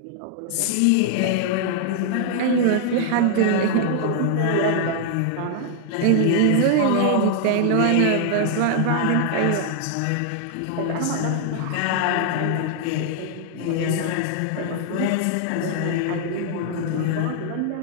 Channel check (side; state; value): both; different; correlation 0.00